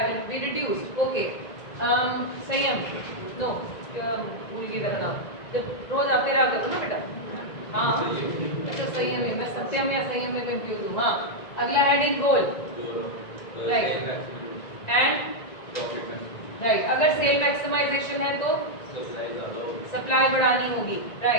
will be reduced. Okay, संयम, नो, भूल गई तेरा नाम, जब रोज आते रहा करो ना बेटा। हाँ, अच्छा संयम है, मैं सत्यम या संयम में कंफ्यूज हूँ। हाँ, अगला heading goal, right, and right. अगर सेल मैक्सिमाइजेशन है तो सप्लाई बढ़ानी होगी,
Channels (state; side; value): late; right; 1.9 ms